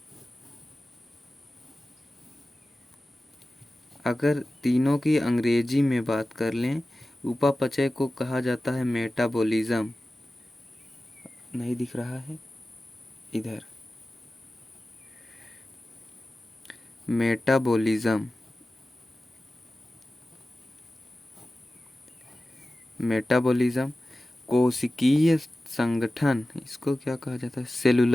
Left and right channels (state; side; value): normal; both; correlation 0.95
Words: अगर तीनों की अंग्रेजी में बात कर लें, उपापचय को कहा जाता है मेटाबॉलिज्म। नहीं दिख रहा है इधर, मेटाबॉलिज्म, मेटाबॉलिज्म। कोशिकीय संगठन इसको क्या कहा जाता है,